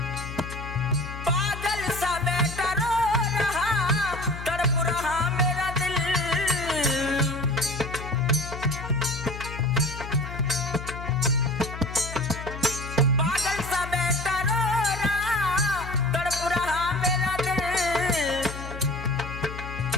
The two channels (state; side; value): noise; left; hum, 9 dB below the sound